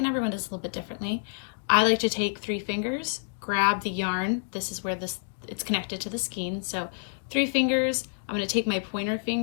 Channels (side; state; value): right; silent; digital silence